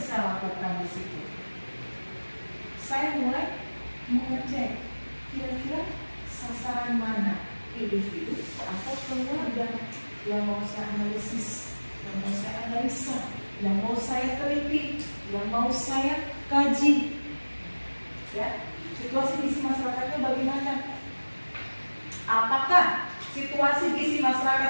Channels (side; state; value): both; inverted; correlation -1.00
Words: lakukan di situ? Saya mulai mengecek kira-kira sasaran mana individu atau keluarga yang mau saya analisis, yang mau saya analisa, yang mau saya teliti, yang mau saya kaji. Ya, situasi gizi masyarakatnya bagaimana? Apakah situasi gizi